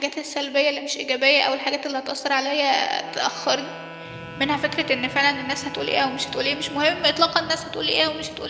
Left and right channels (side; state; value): both; identical; correlation 1.00